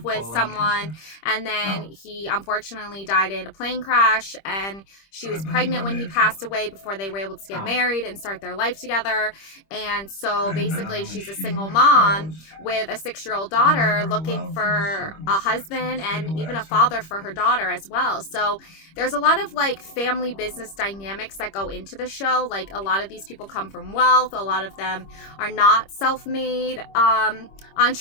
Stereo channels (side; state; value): right; late; 25 ms